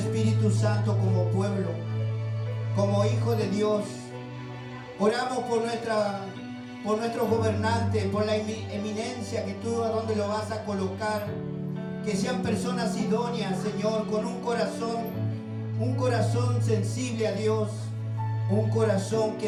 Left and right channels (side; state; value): both; identical; correlation 1.00